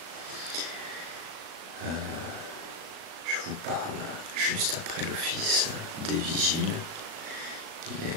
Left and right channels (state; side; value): late; left; 37 ms